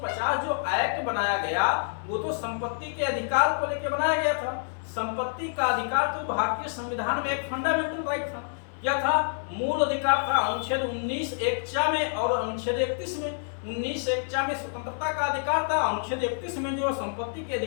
जो एक्ट बनाया गया वो तो संपत्ति के अधिकार को लेकर बनाया गया था। संपत्ति का अधिकार तो भारतीय संविधान में एक फंडामेंटल राइट था। क्या था? मूल अधिकार था। अनुच्छेद 19(1) में और अनुच्छेद 31 में, 19(1) में स्वतंत्रता का अधिकार था, अनुच्छेद 31 में जो संपत्ति के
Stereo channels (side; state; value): right; silent; digital silence